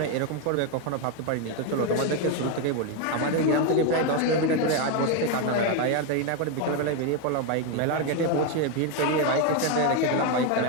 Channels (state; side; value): different; both; correlation 0.02